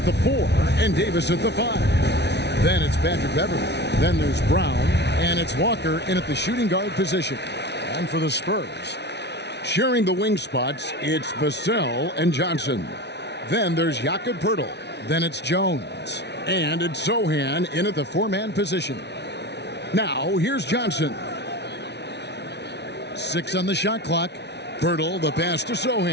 the 4 and Davis at the 5. Then it's Patrick Beverley. Then there's Brown, and it's Walker in at the shooting guard position. And for the Spurs, sharing the wing spots, it's Vassell and Johnson. Then there's Jakob Poeltl. Then it's Jones. And it's Sohan in at the 4-man position. Now, here's Johnson. 6 on the shot clock. Poeltl, the pass to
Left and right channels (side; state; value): right; late; 0.50 ms